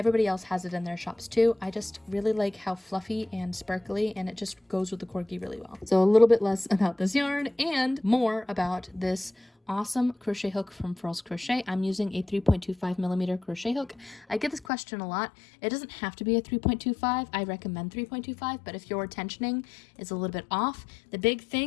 else has it in their shops too. I just really like how fluffy and sparkly, and it just goes with the corgi really well. So a little bit less about this yarn and more about this awesome crochet hook from Furls Crochet. I'm using a 3.25 millimeter crochet hook. I get this question a lot. It doesn't have to be a 3.25. I recommend 3.25, but if your tensioning is a little bit off, the big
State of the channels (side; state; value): right; drops out; at 14.7 s